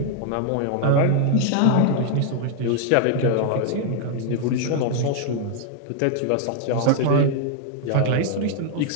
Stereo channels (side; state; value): both; different; correlation 0.00